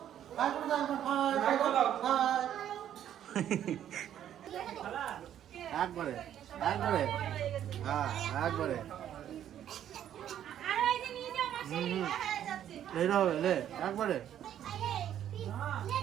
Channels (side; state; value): left; quieter; 10.6 dB